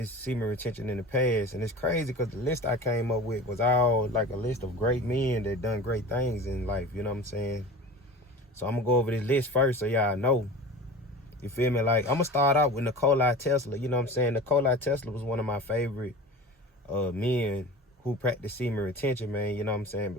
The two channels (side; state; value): both; normal; correlation 0.36